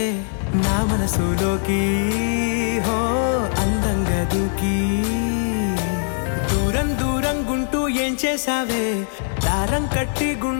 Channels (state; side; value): silent; right; digital silence